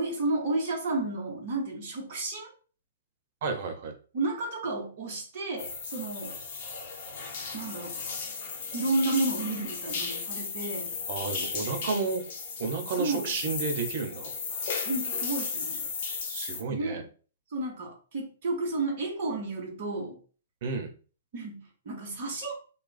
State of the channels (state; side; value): inverted; both; correlation -0.48